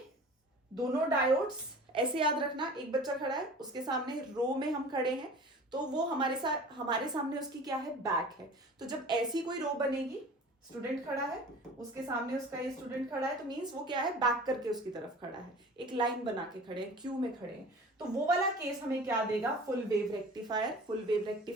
दोनों डायोड्स ऐसे याद रखना, एक बच्चा खड़ा है, उसके सामने रो में हम खड़े हैं, तो वो हमारे सामने उसकी क्या है, बैक है। तो जब ऐसी कोई रो बनेगी, स्टूडेंट खड़ा है, उसके सामने उसका ये स्टूडेंट खड़ा है, तो मींस वो क्या है, बैक करके उसकी तरफ खड़ा है, एक लाइन बना के खड़े हैं, क्यू में खड़े हैं। तो वो वाला केस हमें क्या देगा, full wave rectifier, full wave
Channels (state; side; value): normal; both; correlation 0.41